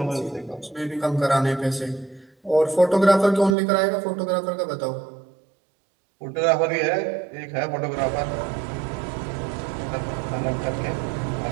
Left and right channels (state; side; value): drops out; left; at 3.6 s